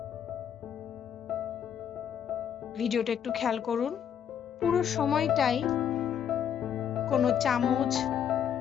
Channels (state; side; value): quieter; right; 8.8 dB